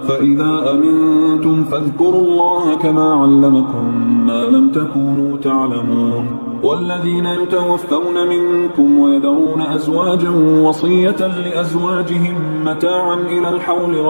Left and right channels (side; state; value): both; inverted; correlation -1.00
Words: فإذا أمنتم فاذكروا الله كما علمكم ما لم تكونوا تعلمون والذين يتوفون منكم ويذرون أزواجا وصية لأزواجهم متاعا إلى الحول